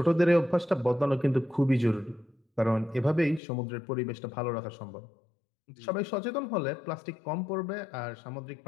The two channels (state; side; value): drops out; right; at 3.4 s